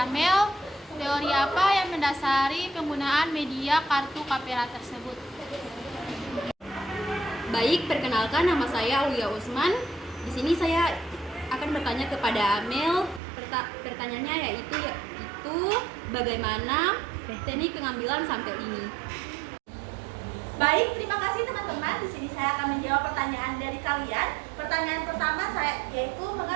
Amel, teori apa yang mendasari penggunaan media kartu Kapera tersebut? Baik, perkenalkan, nama saya Aulia Usman. Di sini saya akan bertanya kepada Amel. Pertanyaannya yaitu bagaimana teknik pengambilan sampel ini. Baik, terima kasih teman-teman. Di sini saya akan menjawab pertanyaan dari kalian. Pertanyaan pertama saya yaitu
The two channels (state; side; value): drops out; left; at 13.2 s